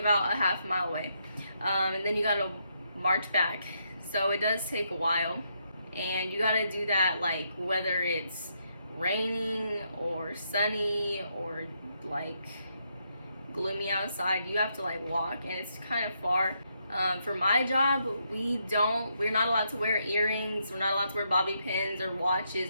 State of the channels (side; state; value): both; inverted; correlation -0.78